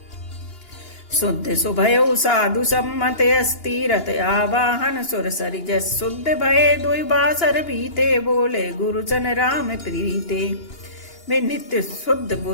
शुद्ध सुभयो साधु सम्मत अस्थिरत आवाहन सुर सरिजस। शुद्ध भय दुई बासर बीते, बोले गुरुजन राम प्रीते। वे नित्य शुद्ध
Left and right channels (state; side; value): late; right; 2.9 ms